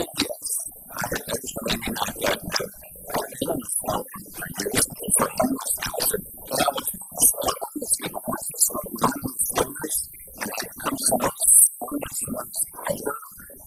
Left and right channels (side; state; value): both; identical; correlation 1.00